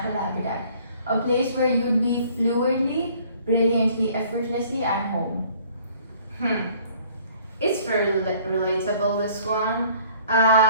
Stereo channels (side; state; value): both; inverted; correlation -0.57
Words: habitat, a place where you'd be fluidly, brilliantly, effortlessly at home. It's very relatable, this one.